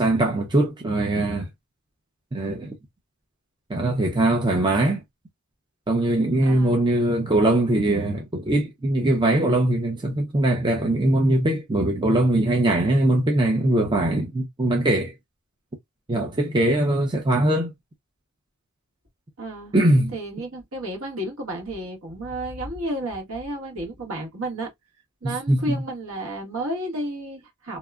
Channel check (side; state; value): both; normal; correlation 0.68